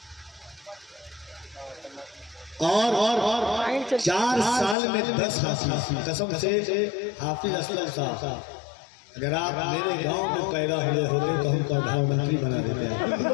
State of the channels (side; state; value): right; drops out; at 4.8 s